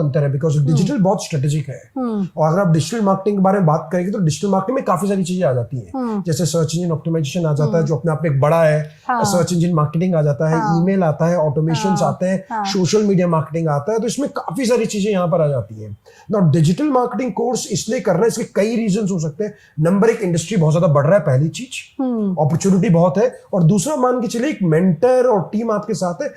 है, बिकॉज डिजिटल बहुत स्ट्रेटेजिक है। और अगर आप डिजिटल मार्केटिंग के बारे में बात करेंगे तो डिजिटल मार्केटिंग में काफी सारी चीजें आ जाती है। जैसे सर्च इंजन ऑप्टिमाइजेशन आ जाता है, जो अपने आप में एक बड़ा है। सर्च इंजन मार्केटिंग आ जाता है, ईमेल आता है, ऑटोमेशन आते हैं, सोशल मीडिया मार्केटिंग आता है। तो इसमें काफी सारी चीजें यहां पर आ जाती हैं। नाउ डिजिटल मार्केटिंग कोर्स इसलिए करना है, इसके कई रीजंस हो सकते हैं। नंबर एक, इंडस्ट्री बहुत ज्यादा बढ़ रहा है, पहली चीज, अपॉर्चुनिटी बहुत है। और दूसरा, मान के चलिए एक मेंटर और टीम आपके साथ है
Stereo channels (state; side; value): identical; both; correlation 1.00